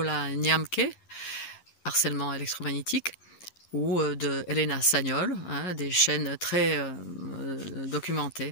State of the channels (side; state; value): right; late; 11 ms